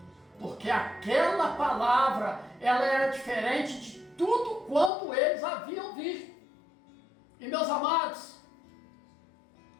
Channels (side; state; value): right; drops out; at 4.9 s